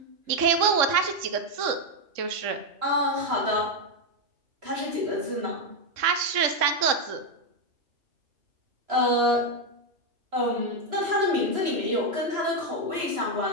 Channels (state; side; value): late; left; 3.6 ms